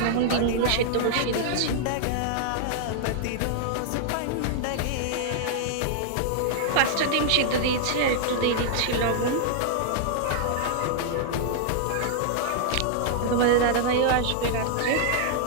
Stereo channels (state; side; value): different; both; correlation -0.01